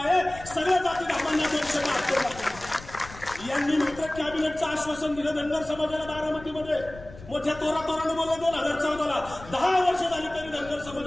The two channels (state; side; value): noise; left; rumble, 17 dB below the sound